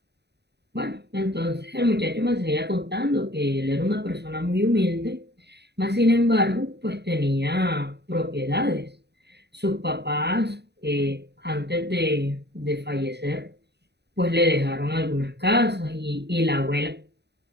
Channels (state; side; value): late; left; 0.49 ms